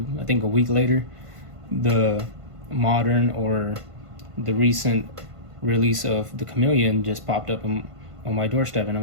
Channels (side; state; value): left; late; 1.5 ms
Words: think a week later, the modern or the recent release of the Chameleon just popped up on my doorstep, and